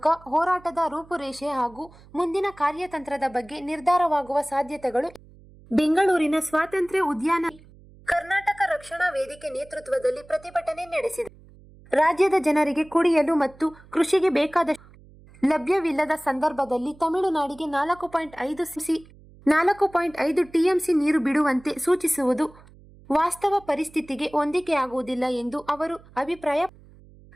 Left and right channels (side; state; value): right; noise; hum, 24 dB below the sound